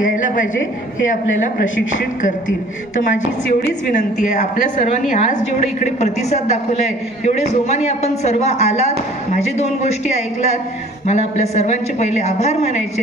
यायला पाहिजे हे आपल्याला प्रशिक्षित करतील. तर माझी एवढीच विनंती आहे, आपल्या सर्वांनी आज जेवढे इकडे प्रतिसाद दाखवलाय, एवढे जोमाने आपण सर्व आलात, माझे 2 गोष्टी ऐकलात, मला आपल्या सर्वांचे पहिले आभार मानायचे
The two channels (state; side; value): normal; both; correlation 0.51